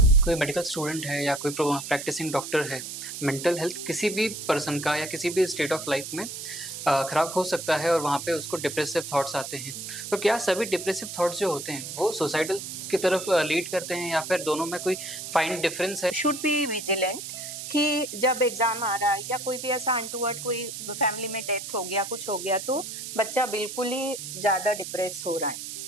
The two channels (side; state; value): right; noise; hiss, 8 dB below the sound